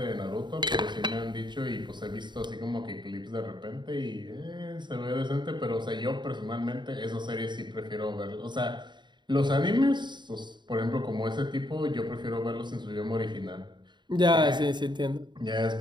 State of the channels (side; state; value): left; late; 0.22 ms